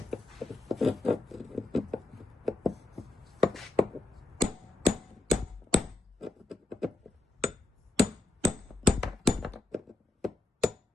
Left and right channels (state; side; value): quieter; right; 3.1 dB